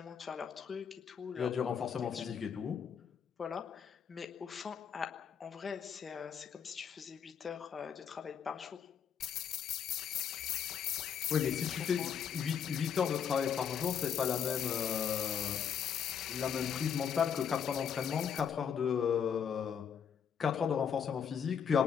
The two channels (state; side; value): quieter; right; 7.7 dB